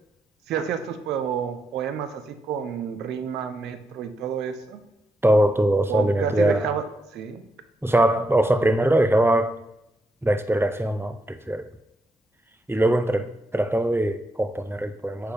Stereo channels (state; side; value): normal; both; correlation 0.82